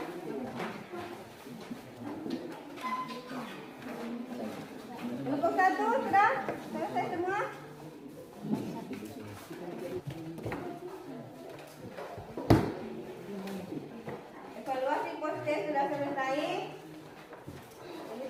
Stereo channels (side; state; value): both; identical; correlation 1.00